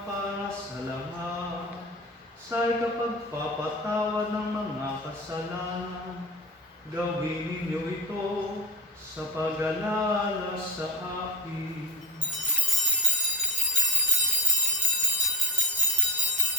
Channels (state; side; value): normal; both; correlation 0.29